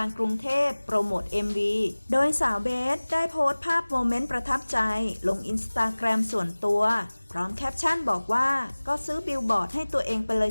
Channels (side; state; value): both; inverted; correlation -1.00